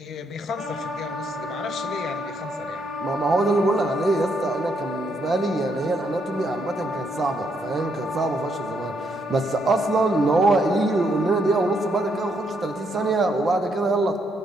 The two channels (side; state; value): both; normal; correlation 0.75